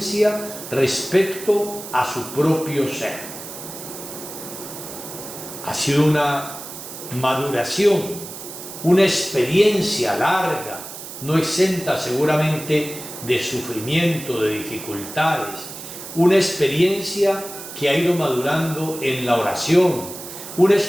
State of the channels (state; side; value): noise; right; hiss, 11 dB below the sound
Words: respecto a su propio ser. Ha sido una maduración, una experiencia larga, no exenta seguramente de sufrimiento, de dificultades, una experiencia que ha ido madurando en la oración, una